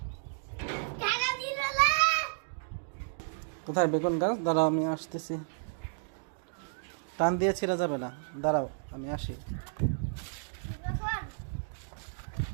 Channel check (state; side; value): silent; left; digital silence